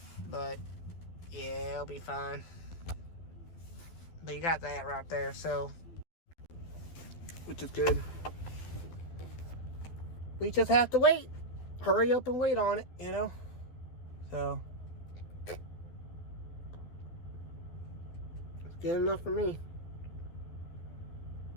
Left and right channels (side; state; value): right; late; 12 ms